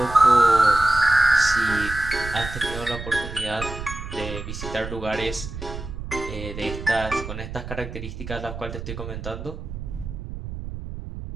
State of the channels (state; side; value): noise; right; rumble, 9 dB below the sound